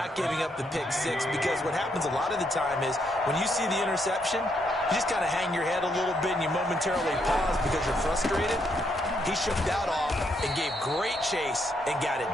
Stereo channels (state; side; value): normal; both; correlation 0.75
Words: giving up the pick six? Because what happens a lot of the time is when you see the interception, you just kind of hang your head a little bit and you momentarily pause because you're frustrated. He shook that off and gave great chase and got it